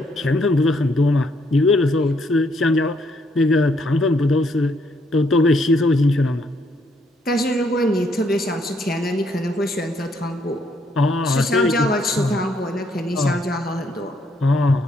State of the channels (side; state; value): both; normal; correlation 0.72